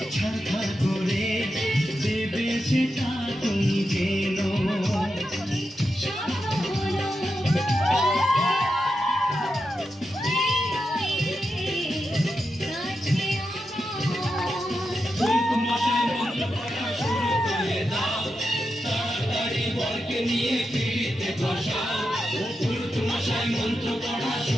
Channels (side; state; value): both; normal; correlation 0.88